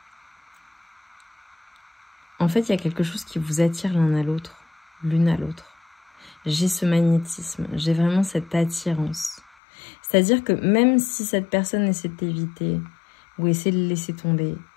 En fait, il y a quelque chose qui vous attire l'un à l'autre, l'une à l'autre. j'ai ce magnétisme, j'ai vraiment cette attirance. C'est-à-dire que même si cette personne essaie de t'éviter, ou essaie de laisser tomber,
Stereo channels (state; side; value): drops out; right; at 9.4 s